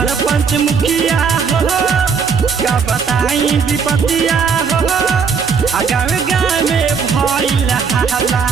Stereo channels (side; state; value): left; quieter; 5.8 dB